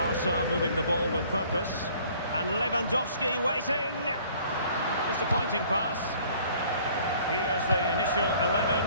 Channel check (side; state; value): both; inverted; correlation -0.55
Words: moving the ball with purpose. And Lewandowski waiting. Disappointing pass. Here's the initial